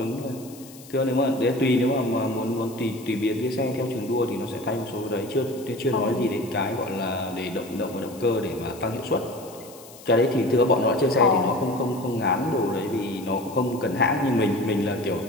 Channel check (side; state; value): left; noise; hiss, 20 dB below the sound